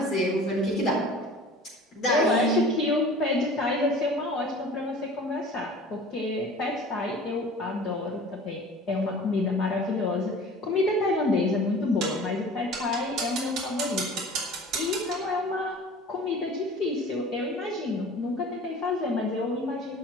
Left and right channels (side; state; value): both; normal; correlation 0.42